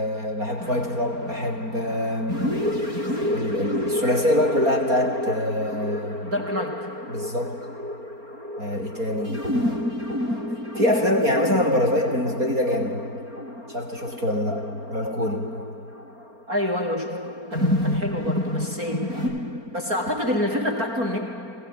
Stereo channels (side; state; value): left; late; 4.3 ms